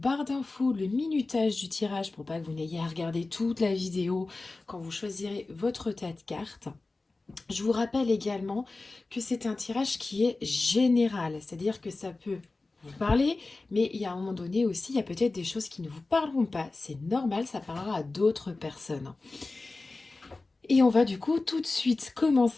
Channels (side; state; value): right; quieter; 3.4 dB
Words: d'infos le minutage du tirage pour pas que vous n'ayez à regarder toute la vidéo quand vous choisirez votre tas de cartes. Je vous rappelle également que c'est un tirage qui est général, c'est-à-dire que ça peut vous parler, mais il y a un moment donné aussi, il y a peut-être des choses qui ne vous parleront pas. C'est normal, ça parlera à d'autres personnes. Et on va du coup tout de suite